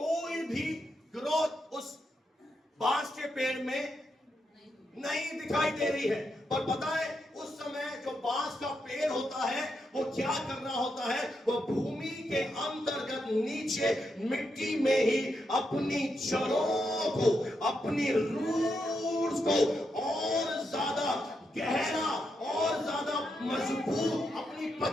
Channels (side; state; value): both; normal; correlation 0.83